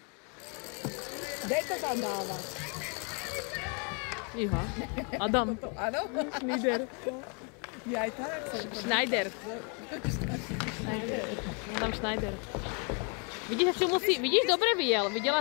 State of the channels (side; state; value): right; quieter; 36.1 dB